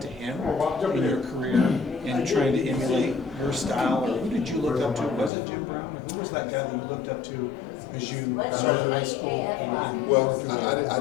to him in your career and trying to emulate your style? Or who did you look up to? Was it Jim Brown? Or who was that guy that you looked up to as you started high school? Well, I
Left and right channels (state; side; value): drops out; right; at 5.3 s